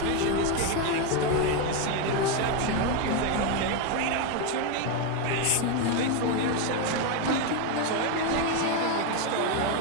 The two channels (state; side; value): different; both; correlation 0.02